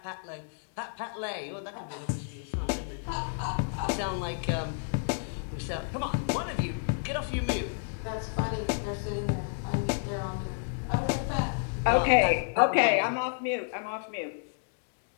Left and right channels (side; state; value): right; silent; digital silence